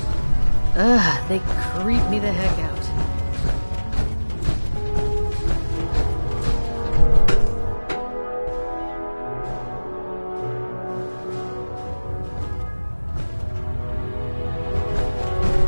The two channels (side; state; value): both; inverted; correlation -1.00